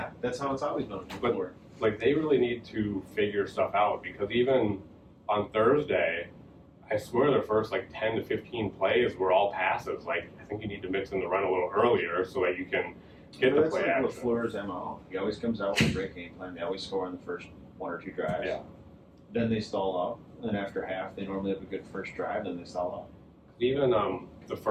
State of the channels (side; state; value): both; identical; correlation 1.00